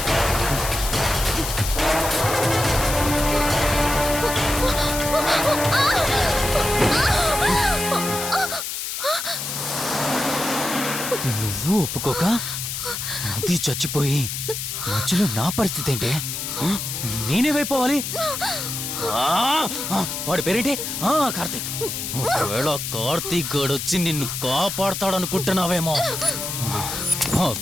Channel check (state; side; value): noise; left; hiss, 4 dB below the sound